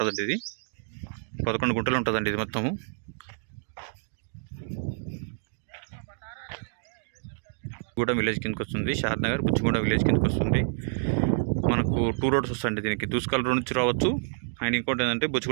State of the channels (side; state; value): left; silent; digital silence